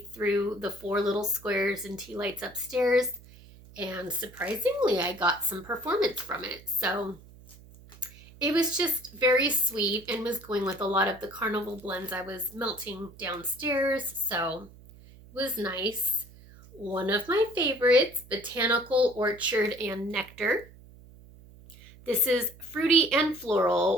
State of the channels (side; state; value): right; noise; hum, 21 dB below the sound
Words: threw the 4 little squares and tea lights upstairs, and surprisingly I got some performance from it. So it was just very sweet and was going with a lot of the carnival blends I was melting downstairs, so it was nice. One of my favorites, Botanical Orchard and Nectar. This is fruity and